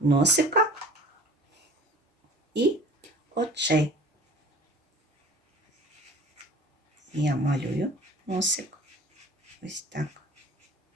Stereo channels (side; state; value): both; normal; correlation 0.45